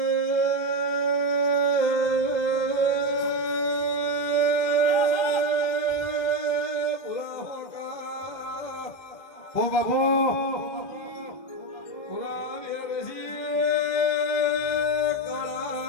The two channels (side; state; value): right; late; 2.0 ms